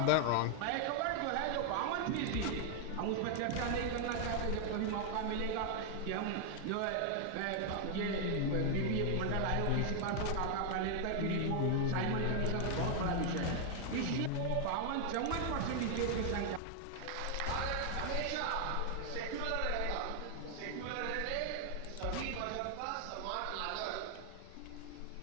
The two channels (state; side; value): different; both; correlation 0.00